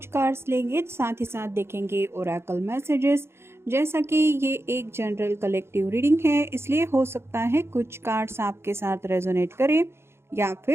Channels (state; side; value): late; left; 0.12 ms